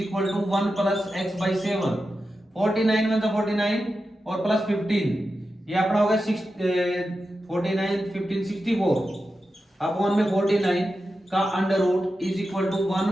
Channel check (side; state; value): both; normal; correlation 0.91